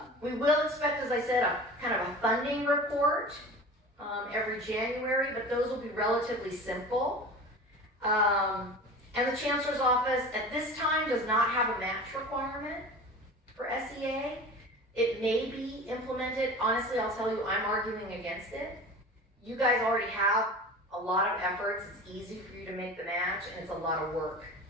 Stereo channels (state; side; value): normal; both; correlation 0.36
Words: We will expect, as I said, a kind of a funding report every January, but those will be relatively simple. And the Chancellor's Office at this time does not have a match requirement for SEA. It may be implemented. Honestly, I'll tell you, I'm arguing against it. You guys already have a lot of efforts. It's easy for you to make the match, and it's a lot of work